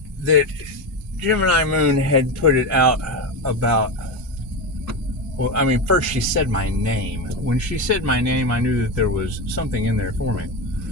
that Gemini Moon had put it out about, well, I mean, first she said my name. When she said my name, I knew that there was something in there for me.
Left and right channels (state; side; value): normal; both; correlation 0.16